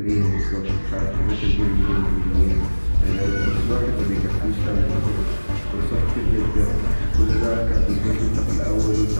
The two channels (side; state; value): both; inverted; correlation -1.00